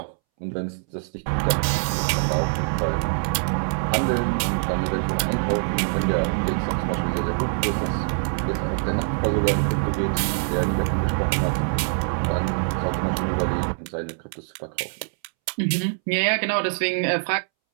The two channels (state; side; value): silent; left; 63 dB below the other